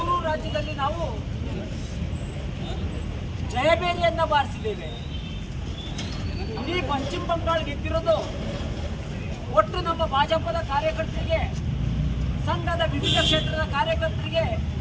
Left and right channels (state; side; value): identical; both; correlation 1.00